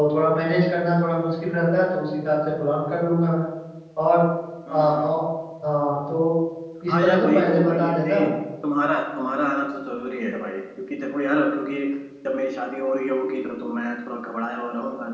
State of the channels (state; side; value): identical; both; correlation 1.00